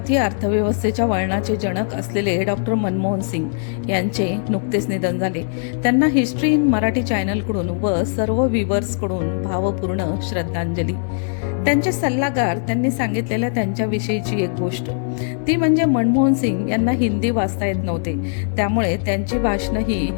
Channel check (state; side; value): silent; right; digital silence